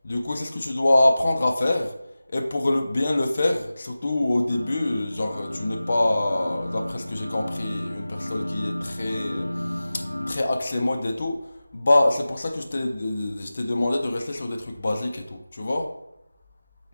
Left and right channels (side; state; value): both; inverted; correlation -0.97